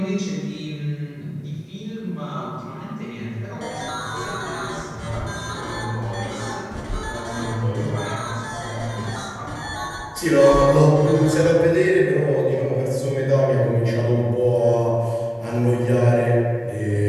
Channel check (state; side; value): identical; both; correlation 1.00